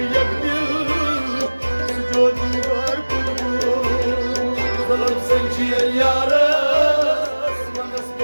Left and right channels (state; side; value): inverted; both; correlation -1.00